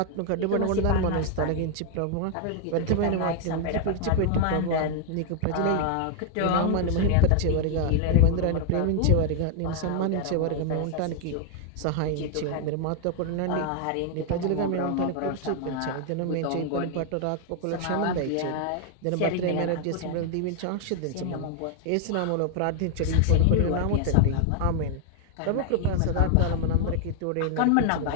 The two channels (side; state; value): both; different; correlation 0.00